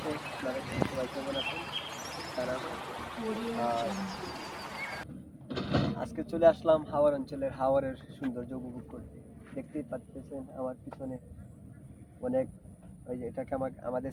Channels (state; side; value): identical; both; correlation 1.00